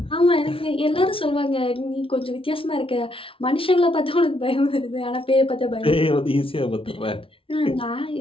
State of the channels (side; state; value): right; late; 0.26 ms